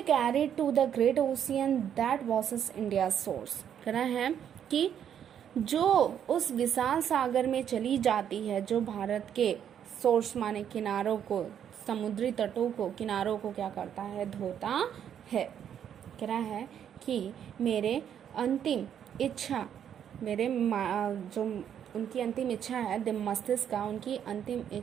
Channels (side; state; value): left; quieter; 9.1 dB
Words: carried to the great ocean that was India source. कहना है कि जो उस विशाल सागर में चली जाती है, जो भारत के सोर्स माने किनारों को, समुद्री तटों को, किनारों को क्या करता है, धोता है। कह रहा है कि मेरे अंतिम इच्छा, मेरे जो उनकी अंतिम इच्छा है, मस्तिष्क का उनकी अंतिम